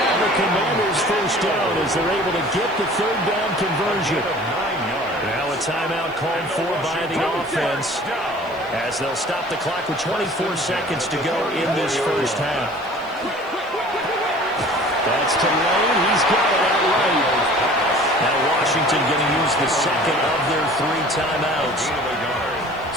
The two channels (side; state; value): right; noise; hiss, 28 dB below the sound